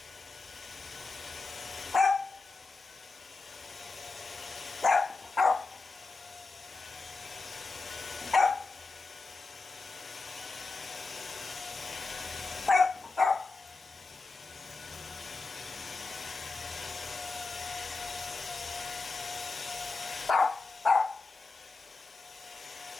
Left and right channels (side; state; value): right; quieter; 3.8 dB